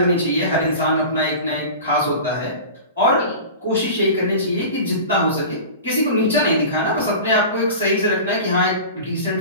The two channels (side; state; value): both; inverted; correlation -0.34